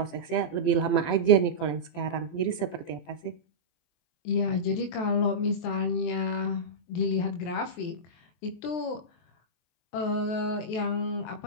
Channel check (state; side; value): late; right; 23 ms